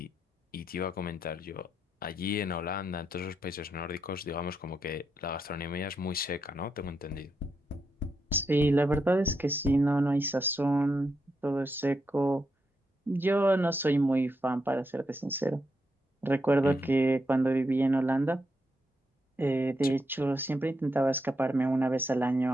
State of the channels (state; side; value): normal; both; correlation 0.82